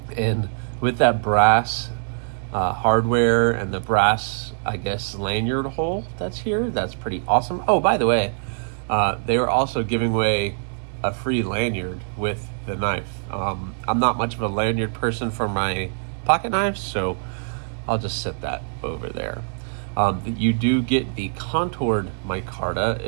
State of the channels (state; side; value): silent; left; digital silence